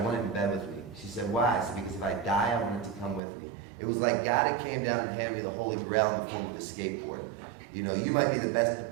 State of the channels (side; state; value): left; drops out; at 3.2 s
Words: want it in bed with me." She said, "Why?" I said, "Because if I die, I want it to come with me." It was like God had came down and handed me the Holy Grail in the form of a skateboard. You might be the